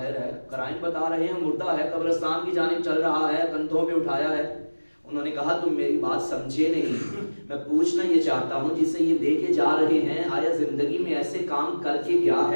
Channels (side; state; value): both; inverted; correlation -1.00